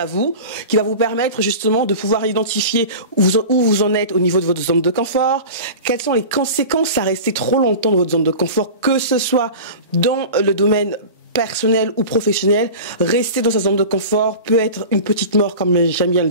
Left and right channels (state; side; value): inverted; both; correlation -0.34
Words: vous, qui va vous permettre justement de pouvoir identifier où vous en êtes au niveau de votre zone de confort, quelles sont les conséquences à rester trop longtemps dans votre zone de confort, que ce soit dans le domaine personnel ou professionnel. Rester dans sa zone de confort peut être une petite mort, comme j'aime bien le